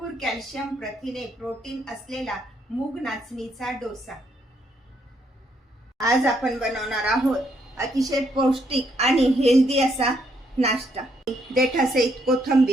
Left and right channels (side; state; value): both; normal; correlation 0.73